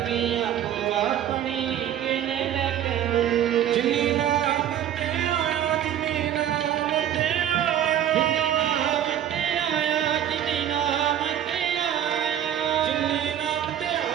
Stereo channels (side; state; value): left; quieter; 10.6 dB